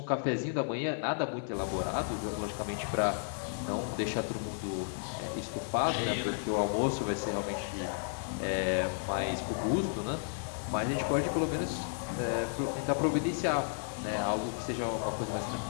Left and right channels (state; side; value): silent; right; digital silence